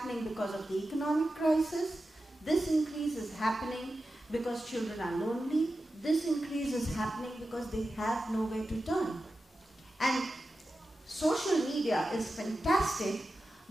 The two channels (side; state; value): both; normal; correlation 0.92